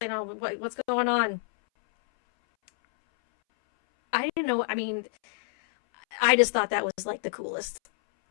what's going on?" I didn't know. I mean, I just thought that was like the coolest,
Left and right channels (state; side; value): silent; right; 60 dB below the other